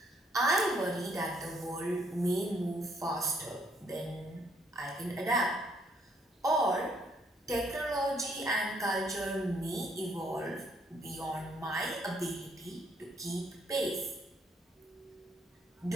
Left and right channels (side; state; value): both; normal; correlation 0.69